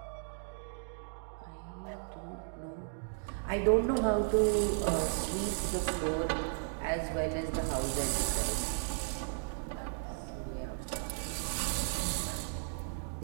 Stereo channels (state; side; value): silent; left; digital silence